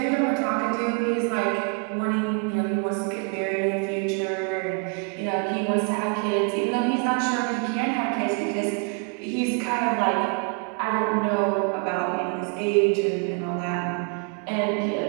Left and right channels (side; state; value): left; quieter; 34.6 dB